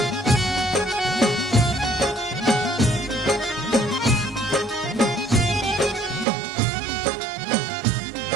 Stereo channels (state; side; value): drops out; left; at 6.2 s